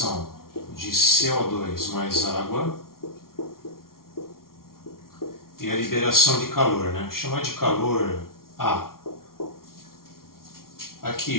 de CO2 mais água e a liberação de calor, né? Chamar de calor A.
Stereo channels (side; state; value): right; late; 0.93 ms